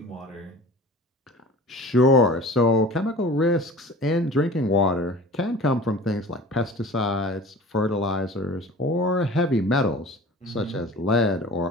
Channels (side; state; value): both; normal; correlation 0.41